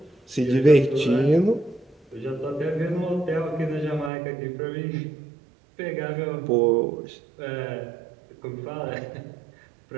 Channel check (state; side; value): drops out; left; at 4.1 s